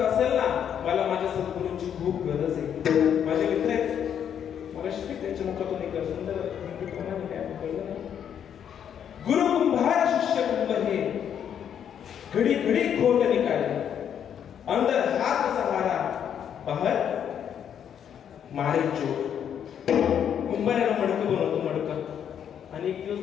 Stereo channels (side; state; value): right; quieter; 8.8 dB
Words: असेल ना मला माझ्या सद्गुरूंची खूप गरज आहे. माझे मित्र आहेत त्यांच्या मुखातून एक सुंदर गुरु कुंभार शिष्य कुंभ हे घडी घडी खोट निकाले अंदर हात सहारा बाहेर मारे चोर. कुंभाराला मडकं बनवतो मडकं आणि एक दिवस